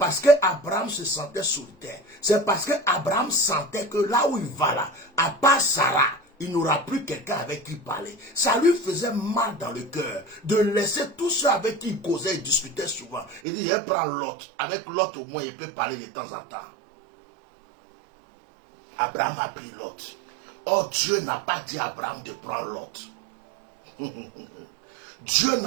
que Abraham se sentait solitaire. C'est parce que Abraham sentait que là où il va là, à part Sarah, il n'aura plus quelqu'un avec qui parler. Ça lui faisait mal dans le cœur de laisser tous ceux avec qui il causait et discutait souvent. Il dit, je prends Lot. Avec Lot, au moins, il peut parler de temps en temps. Abraham a pris Lot. Or, Dieu n'a pas dit à Abraham de prendre Lot. Dieu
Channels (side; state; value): left; drops out; at 13.4 s